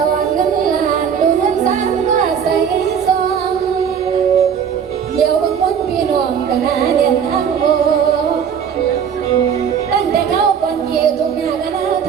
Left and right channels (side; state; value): left; quieter; 7.6 dB